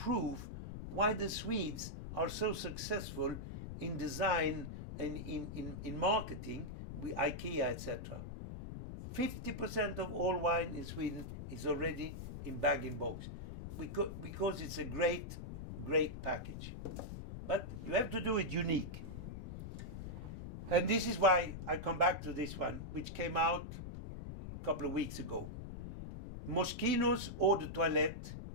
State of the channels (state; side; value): noise; left; rumble, 8 dB below the sound